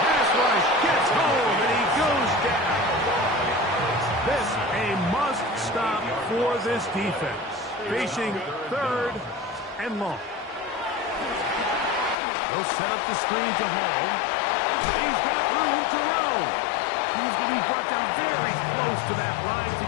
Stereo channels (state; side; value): drops out; right; at 12.2 s